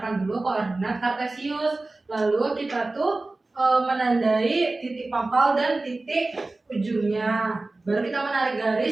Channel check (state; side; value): quieter; left; 3.2 dB